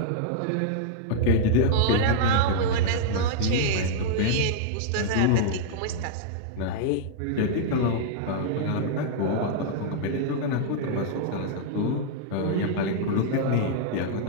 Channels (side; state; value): both; different; correlation -0.02